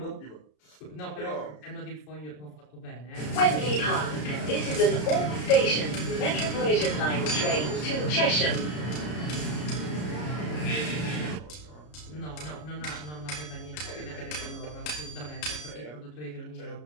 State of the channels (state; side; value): late; right; 33 ms